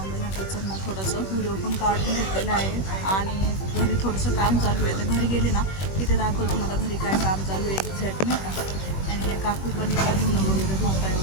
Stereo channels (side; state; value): right; late; 21 ms